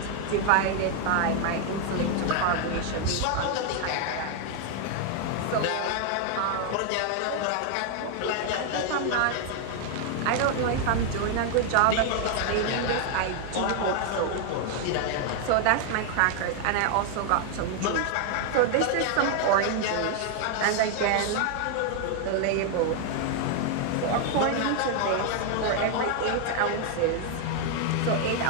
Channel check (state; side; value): different; both; correlation 0.00